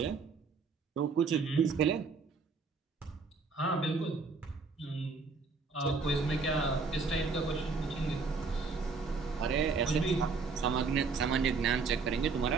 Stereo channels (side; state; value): left; quieter; 4.5 dB